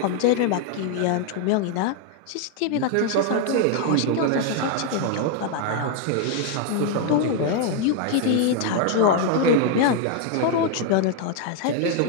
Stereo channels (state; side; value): different; both; correlation 0.00